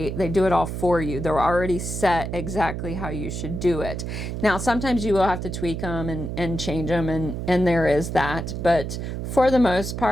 they do it all for you. They're already set exactly how you should do it. Now, sometimes you will have to tweak them and change them, and there is that, but for the most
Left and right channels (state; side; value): noise; right; hum, 5 dB below the sound